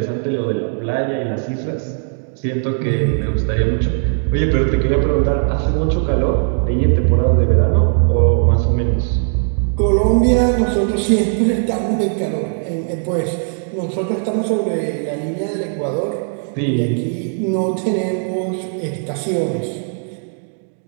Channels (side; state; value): left; silent; 59 dB below the other